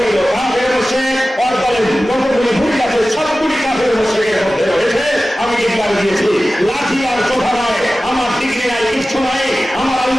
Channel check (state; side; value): normal; both; correlation 0.96